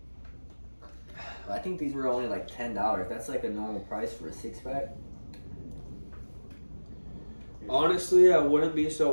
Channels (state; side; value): inverted; both; correlation -1.00